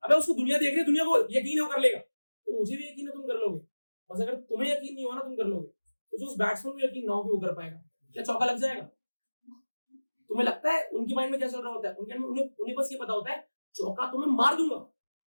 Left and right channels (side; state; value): both; inverted; correlation -1.00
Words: अबे उसको दुनिया देख रही है, दुनिया को यकीन है वो कर लेगा, तो मुझे भी यकीन है तुम कर लोगे। बस अगर तुम्हें यकीन नहीं हो ना तुम कर लोगे, तो जो उस बैट्समैन को यकीन ना हो कि वो कर पाएगा, क्या चौका लग जाएगा? तुम्हें लगता है उनके माइंड में क्या चल रहा होता है? उन्हें बस ये पता होता है चौका तो मैं मार दूंगा,